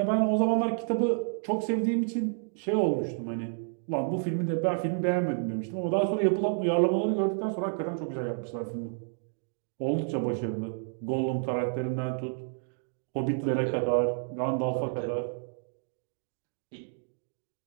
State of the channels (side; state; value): left; silent; digital silence